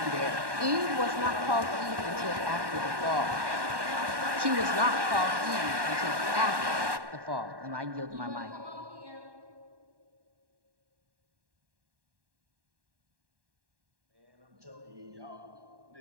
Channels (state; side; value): late; left; 1.1 ms